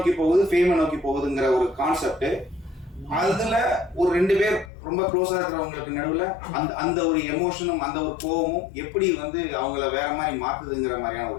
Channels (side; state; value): right; drops out; at 4.7 s